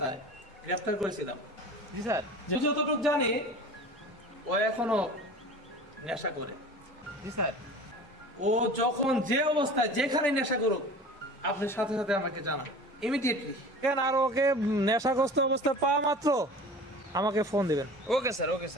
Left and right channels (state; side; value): normal; both; correlation 0.39